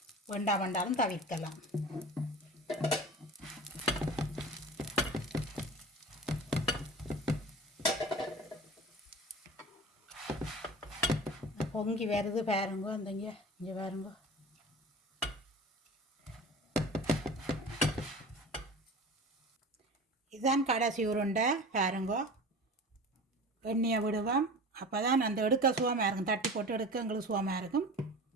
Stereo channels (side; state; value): both; normal; correlation 0.36